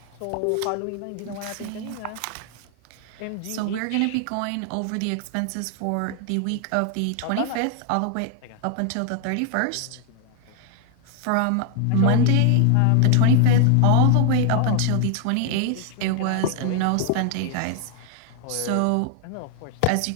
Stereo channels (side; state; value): both; different; correlation 0.00